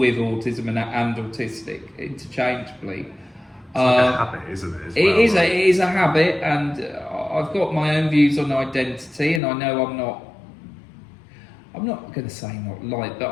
autism and autistic interchangeably. It's like a habit, isn't it? As well, It is a habit, and I've got my own views on identity, and I know I'm not going to say not like, but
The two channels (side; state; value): right; drops out; at 9.4 s